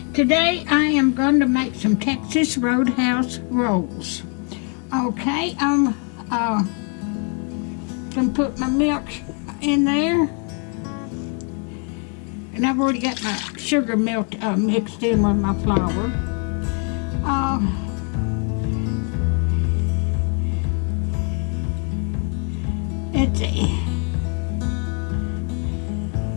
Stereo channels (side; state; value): right; quieter; 39.8 dB